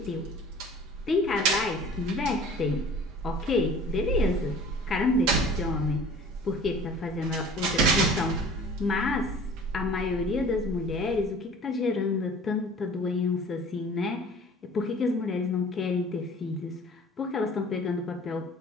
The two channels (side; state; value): both; normal; correlation 0.46